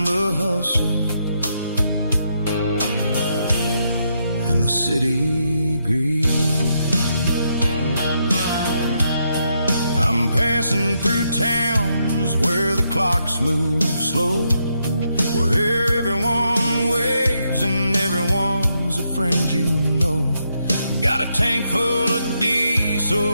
the hustle and the city greed. I'm passing through towns where the clocks move slow, where everyone waves and everyone's a friend you know. Got a tank full of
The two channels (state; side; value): inverted; both; correlation -0.79